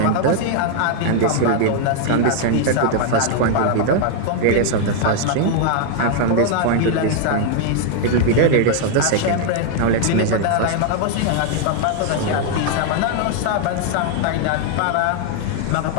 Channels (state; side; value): different; both; correlation 0.00